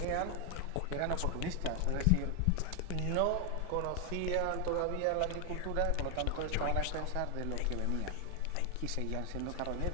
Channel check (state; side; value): different; both; correlation 0.00